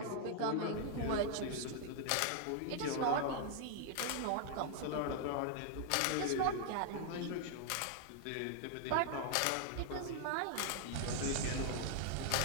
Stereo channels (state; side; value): different; both; correlation 0.00